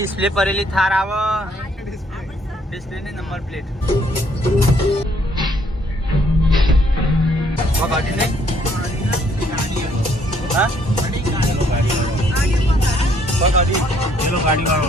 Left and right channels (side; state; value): both; normal; correlation 0.66